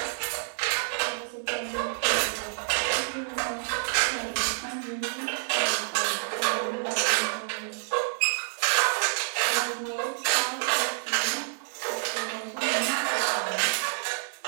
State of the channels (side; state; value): left; silent; digital silence